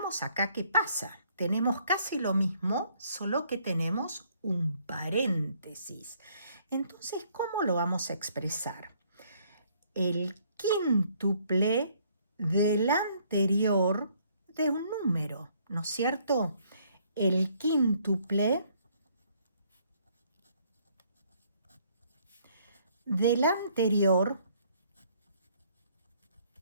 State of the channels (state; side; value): inverted; both; correlation -0.65